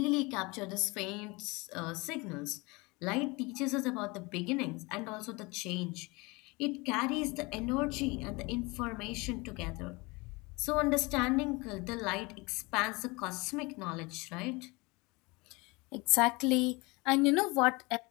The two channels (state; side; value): quieter; right; 25.5 dB